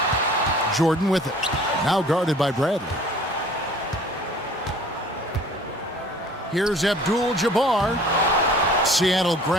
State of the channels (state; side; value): normal; both; correlation 0.50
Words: Jordan with it. Now guarded by Bradley. Here's Abdul-Jabbar. Seattle